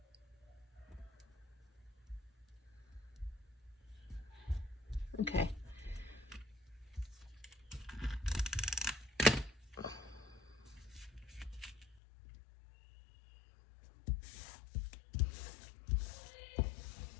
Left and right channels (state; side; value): drops out; right; at 12.0 s